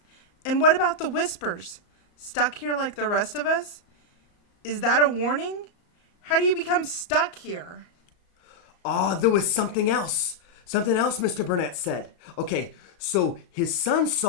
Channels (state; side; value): late; right; 34 ms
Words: And what about the whispers? Stuck here like the rest of us? Is that a warning? How do you become stuck here? Oh, there was something else. Something else Mr. Burnett said. Okay, so his son